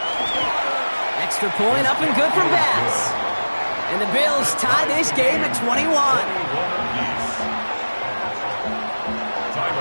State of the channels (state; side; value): inverted; both; correlation -1.00